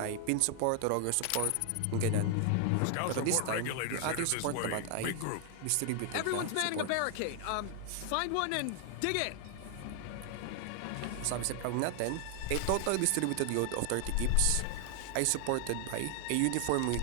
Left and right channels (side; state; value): both; different; correlation 0.00